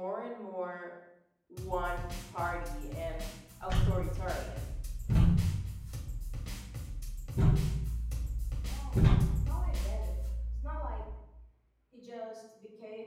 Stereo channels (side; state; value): both; identical; correlation 1.00